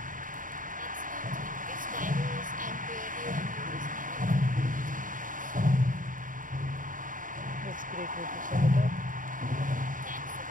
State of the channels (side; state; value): left; late; 0.39 ms